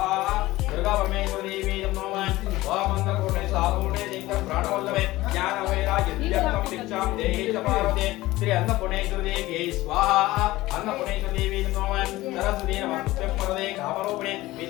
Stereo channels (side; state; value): right; quieter; 18.0 dB